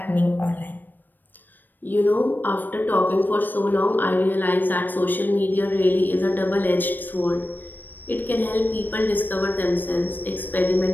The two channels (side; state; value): right; late; 0.091 ms